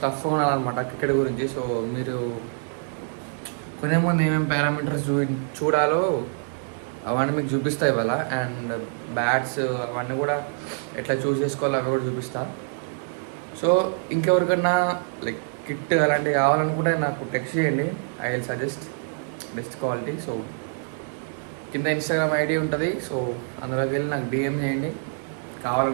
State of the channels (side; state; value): left; silent; 61 dB below the other